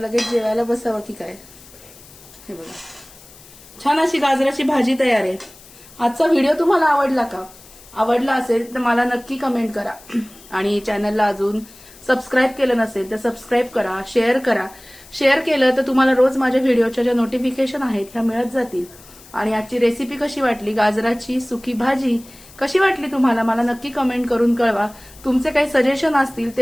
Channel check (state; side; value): noise; left; hiss, 22 dB below the sound